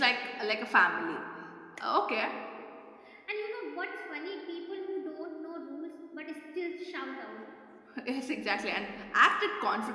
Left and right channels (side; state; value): both; identical; correlation 1.00